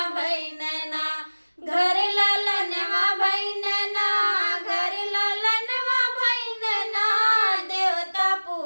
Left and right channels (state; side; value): inverted; both; correlation -1.00